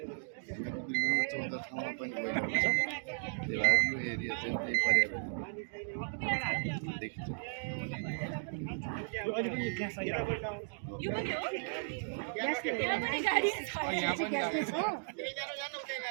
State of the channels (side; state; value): left; silent; digital silence